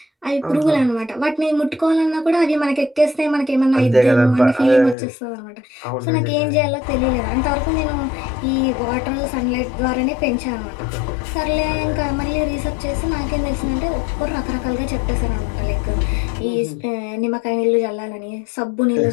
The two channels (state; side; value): drops out; right; at 5.0 s